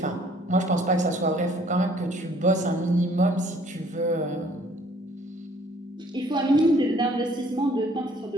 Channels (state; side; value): normal; both; correlation 0.59